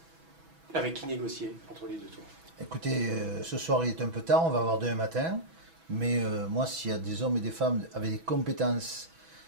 avec qui négocier entre les deux tours? Écoutez, ce soir il est un peu tard, on va voir demain matin, mais moi s'il y a des hommes et des femmes avec des compétences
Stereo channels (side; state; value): left; late; 6.1 ms